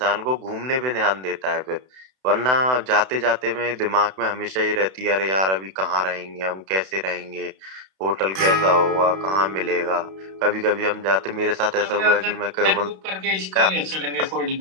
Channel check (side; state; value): left; late; 32 ms